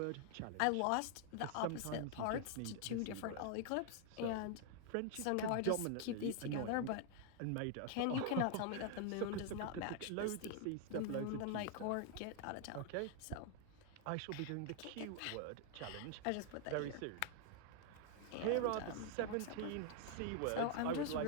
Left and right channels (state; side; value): different; both; correlation 0.00